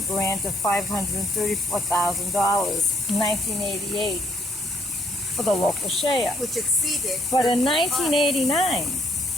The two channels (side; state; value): both; normal; correlation 0.68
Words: grant of $534,000 in 1988 for the local share. which exceeded. But in 1989,